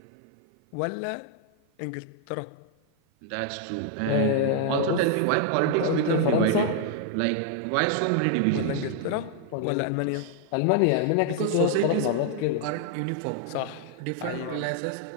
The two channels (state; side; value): different; both; correlation 0.00